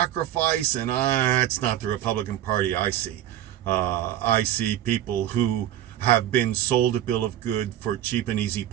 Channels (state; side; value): quieter; left; 12.3 dB